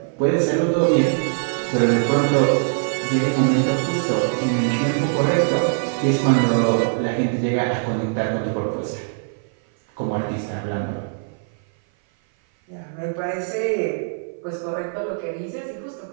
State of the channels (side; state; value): left; silent; 57 dB below the other